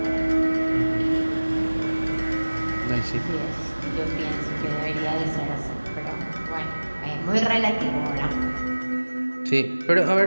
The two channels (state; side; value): inverted; both; correlation -1.00